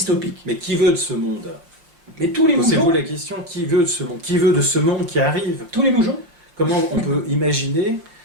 Mais qui veut de ce monde? Mais tous les moujons. Posez-vous la question, qui veut de ce monde? Qui veut de ce monde qui arrive? Tous les moujons. Comment on peut imaginer,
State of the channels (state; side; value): late; left; 5.9 ms